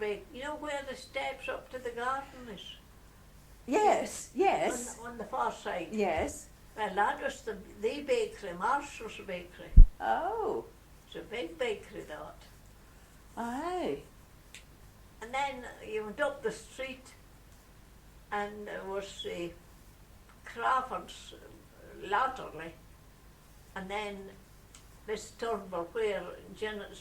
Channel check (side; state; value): both; identical; correlation 1.00